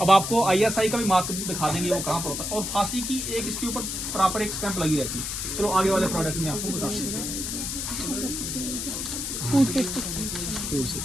आपको ISI का भी मार्क दिखा देंगे वो कहाँ पर होता है। और फांसी की एक इसके ऊपर प्रॉपर एक स्टैंप लगी रहती है। चलो आगे वाले प्रोडक्ट में आपको बता देते हैं।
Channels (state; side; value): noise; left; hiss, 3 dB below the sound